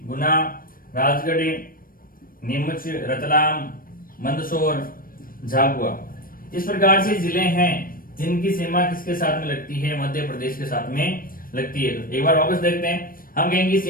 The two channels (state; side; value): late; right; 0.41 ms